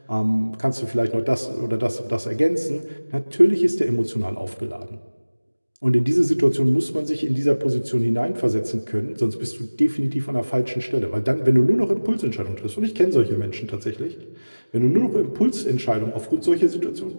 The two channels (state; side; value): inverted; both; correlation -1.00